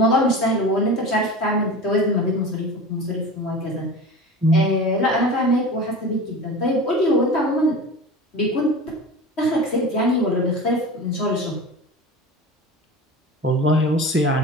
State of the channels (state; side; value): normal; both; correlation 0.33